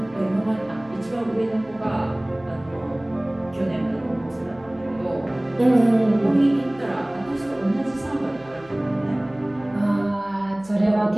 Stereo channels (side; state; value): right; noise; hum, 25 dB below the sound